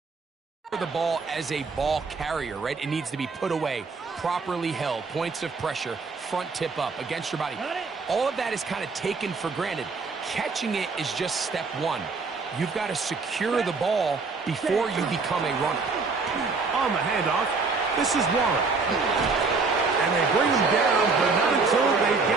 the ball as a ball carrier, right? It needs to be put away, properly held, points of pressure, front tip up against your body. All of that is kind of taken for granted. Catching it is just step one. You've got to secure the ball before you become a runner. On the handoff, this is Warren. And they bring him down, but not until they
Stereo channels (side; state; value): left; quieter; 4.3 dB